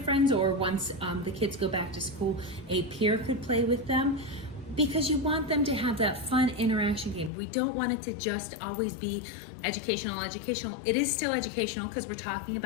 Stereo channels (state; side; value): drops out; right; at 7.3 s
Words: or once the kids go back to school, a peer could play with them, because you want them to have that fun interaction game. We don't want it to just always be educational. It is still educational because we're talking